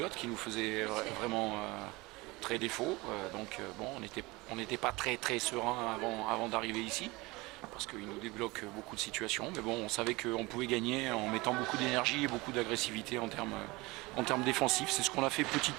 qui nous faisait vraiment très défaut. Bon, on n'était pas très serein avant d'arriver ici, parce qu'il nous débloque beaucoup de situations. Mais bon, on savait qu'on pouvait gagner en mettant beaucoup d'énergie et beaucoup d'agressivité en termes défensifs. C'est ce qu'on a fait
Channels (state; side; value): quieter; left; 22.8 dB